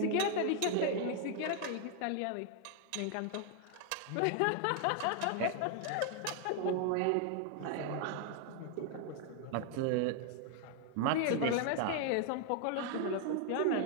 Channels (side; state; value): both; different; correlation 0.00